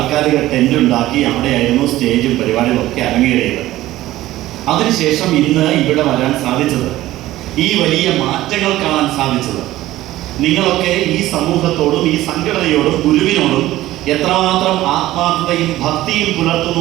ടെൻ്റ് ഉണ്ടാക്കി അവിടെയായിരുന്നു സ്റ്റേജും പരിപാടികളൊക്കെ അരങ്ങേറിയത്. അതിനുശേഷം ഇന്ന് ഇവിടെ വരാൻ സാധിച്ചത്, ഈ വലിയ മാറ്റങ്ങൾ കാണാൻ സാധിച്ചത്, നിങ്ങളൊക്കെ ഈ സമൂഹത്തോടും ഈ സംഘടനയോടും ഗുരുവിനോടും എത്രമാത്രം ആത്മാർത്ഥതയും ഭക്തിയും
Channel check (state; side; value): quieter; left; 15.7 dB